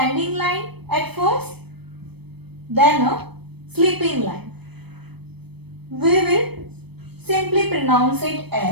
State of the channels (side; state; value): left; late; 0.97 ms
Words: line at first, then a sleeping line. We will simply pronounce it